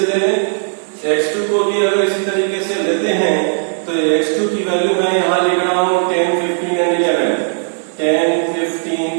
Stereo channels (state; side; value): silent; left; 63 dB below the other